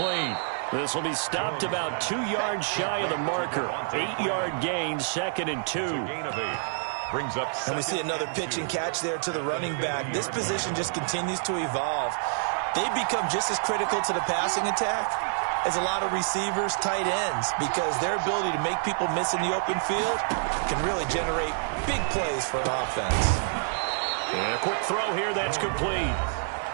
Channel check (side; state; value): left; silent; digital silence